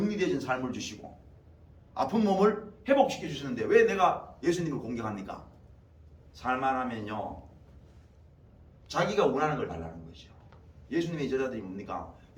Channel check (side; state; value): both; identical; correlation 1.00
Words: 삶을 주시고 아픈 몸을 회복시켜 주시는데 왜 내가 예수님을 공격합니까? 살만하면요 자기가 원하는 걸 달라는 거죠. 예수님의 제자들이 뭡니까?